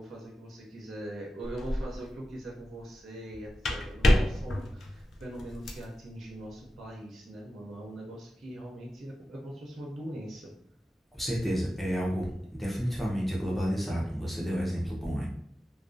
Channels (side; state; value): both; normal; correlation 0.93